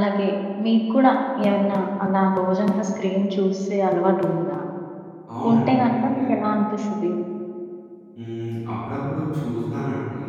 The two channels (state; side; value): identical; both; correlation 1.00